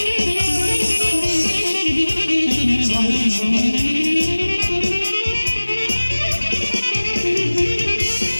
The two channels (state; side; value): inverted; both; correlation -1.00